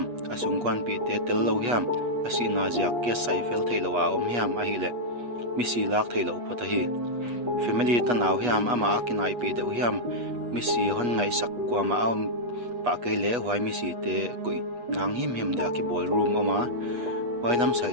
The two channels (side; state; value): left; late; 8.3 ms